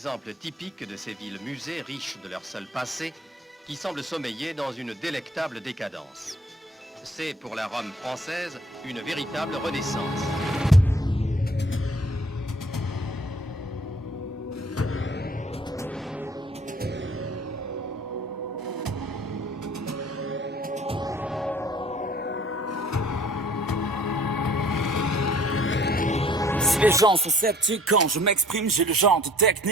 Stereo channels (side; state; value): both; normal; correlation 0.55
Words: typique de ces villes-musées riches de leur seul passé qui semblent sommeiller dans une délectable décadence. C'est pour la Rome française une véritable renaissance. Les gens sont sceptiques quand je m'exprime, j'ai le genre de